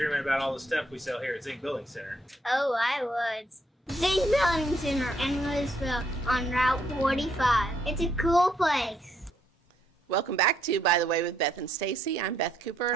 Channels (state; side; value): normal; both; correlation 0.73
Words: about all the stuff we sell here at Zink Building Center. Oh, I would. Zink Building Center in Louisville on Route 45. It's a cool place. Welcome back to By the Way with Beth and Stacey. I'm Beth Cooper.